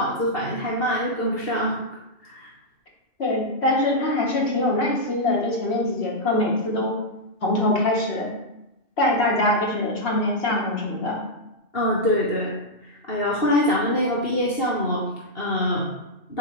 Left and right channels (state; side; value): late; right; 2.7 ms